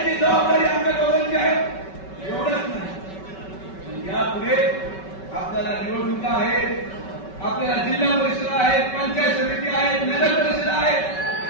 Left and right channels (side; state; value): right; late; 5.3 ms